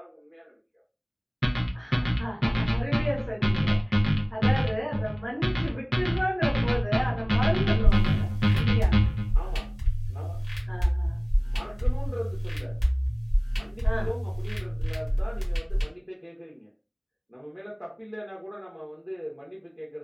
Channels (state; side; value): identical; both; correlation 1.00